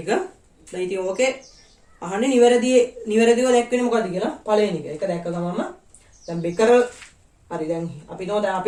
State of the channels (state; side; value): identical; both; correlation 1.00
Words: දැන් ඉතින් ඕකේ අහන්නේ නිවැරදිව දැක්වෙන්නේ මොකද්ද කියලා පළවෙනි එක. ඒක දැක්ක ගමන්ම දැන් බෙකරල් හරි දැන් අපි